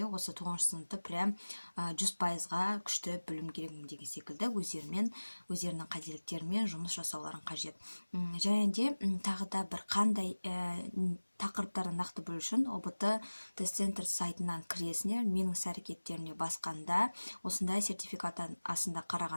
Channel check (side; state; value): both; inverted; correlation -1.00